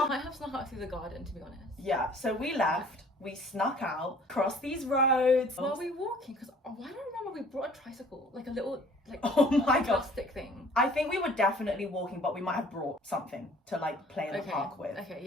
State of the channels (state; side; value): normal; both; correlation 0.53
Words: might have snuck out through the garden, to be honest. Yeah, so we left. We snuck out, crossed these roads. Were we walking? Because I don't remember we brought a tricycle, like a little, like, oh my God, plastic thing. I think we were definitely walking, but we might have brought something to like play in the park with. Okay,